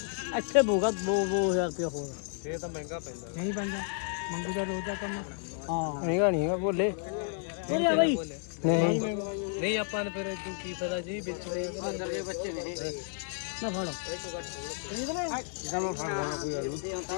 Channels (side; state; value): right; silent; 57 dB below the other